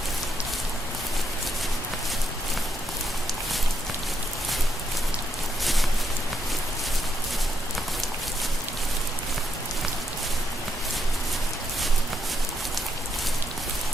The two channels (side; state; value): both; normal; correlation 0.79